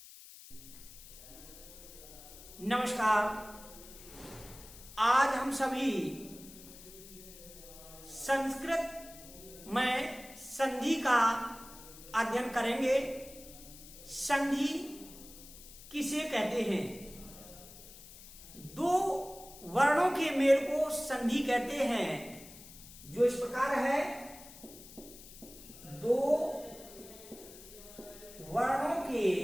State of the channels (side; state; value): left; noise; hiss, 17 dB below the sound